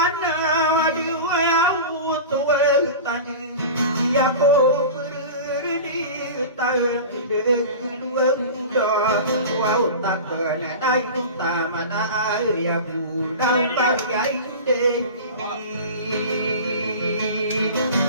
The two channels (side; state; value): both; inverted; correlation -0.32